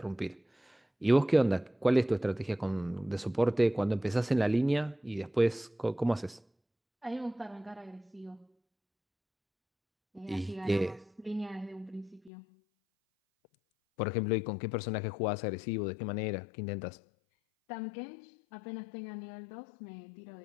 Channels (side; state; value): right; drops out; at 12.3 s